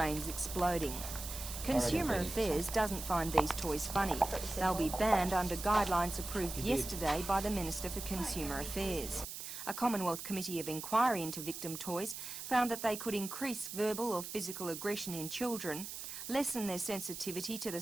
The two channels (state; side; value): noise; right; hiss, 8 dB below the sound